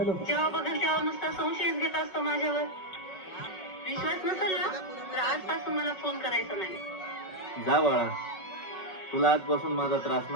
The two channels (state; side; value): late; right; 5.4 ms